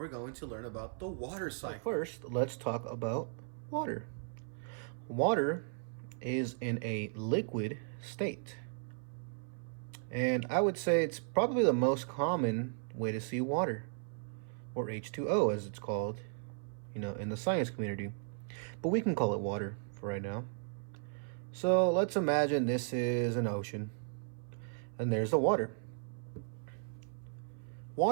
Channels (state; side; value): silent; left; 54 dB below the other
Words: going to learn about the water cycle. First, let's talk about water. Water is in a liquid state. And I would say it's probably the most common way to see water, or H2O as it's called, in the science community. But we can call it water for right now. So let's imagine this is an ocean, and there's the water.